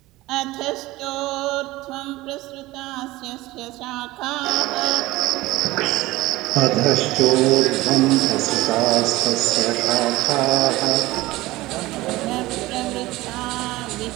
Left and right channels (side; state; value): left; quieter; 18.7 dB